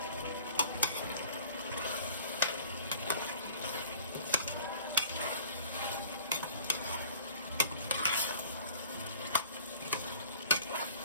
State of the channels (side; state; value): both; inverted; correlation -0.47